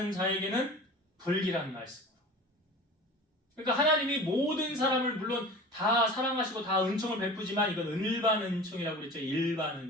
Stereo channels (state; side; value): normal; both; correlation 0.38